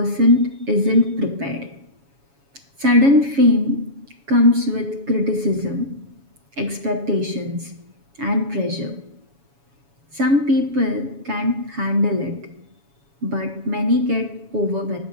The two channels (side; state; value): left; late; 7.2 ms